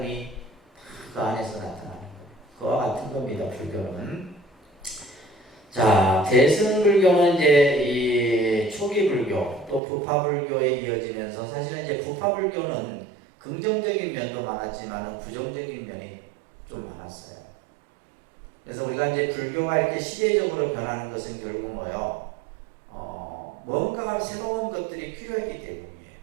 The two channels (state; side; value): drops out; left; at 9.8 s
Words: 그 안에서 나타나는 거예요. 그와 같은 겁니다. 불교는. 자, 대승불교는 이제 이 초기 불교 또 부파불교에 이어지면서 사실은 이제 부파불교는 긍정적인 면도 많았지만 부정적인 면이 좀 많았어요. 그래서 우리가 이제 불교가 이렇게 시대적으로 변하는 것은 결국 뭐요? 뭔가 새로운 것들이 필요했기 때문이에요.